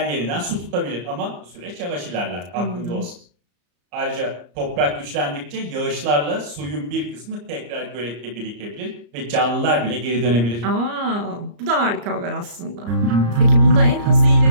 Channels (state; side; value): late; left; 34 ms